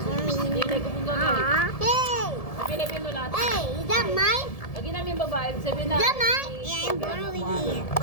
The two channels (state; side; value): late; right; 1.7 ms